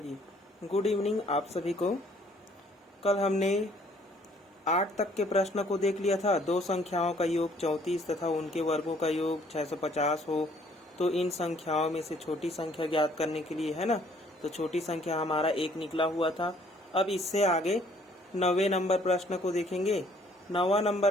गुड इवनिंग आप सभी को। कल हमने 8 तक के प्रश्न को देख लिया था। दो संख्याओं का योग 34 तथा उनके वर्गों का योग 650 हो तो इन संख्याओं में से छोटी संख्या ज्ञात करने के लिए, है ना, तो छोटी संख्या हमारा 1 निकला हुआ था। अब इससे आगे 9वें नंबर प्रश्न को देखेंगे। 9वां नंबर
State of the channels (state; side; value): normal; both; correlation 0.61